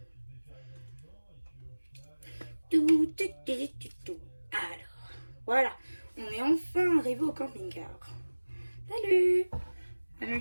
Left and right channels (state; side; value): inverted; both; correlation -1.00